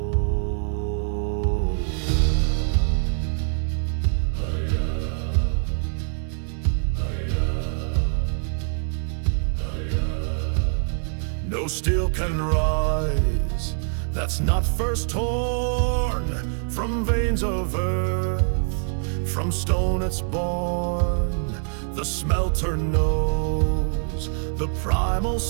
No steel can rise that's not first torn from veins of earth. From stone it's born. The smelter knows the primal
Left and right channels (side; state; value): left; silent; digital silence